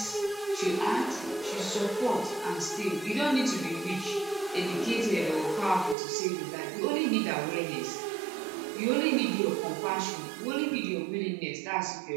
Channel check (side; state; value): left; drops out; at 6.0 s